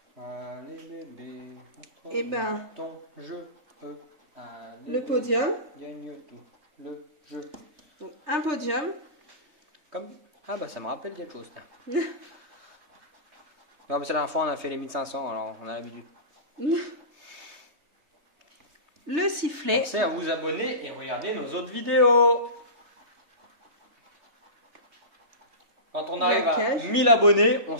Allez bébé. Eh ben, ton jeu. Allez, le podium. gagne tout. Le jeu. Donc, un podium. Comme... Ah bah ça me rappelle quelque chose. Non, mais c'est la dernière fois on a fait les 1500, alors on a l'habitude. Le sifflet. Pensez à vous abonner et regarder nos autres vidéos. Quand on arrive à cage. 1000 abonnés, on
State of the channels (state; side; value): late; left; 3.3 ms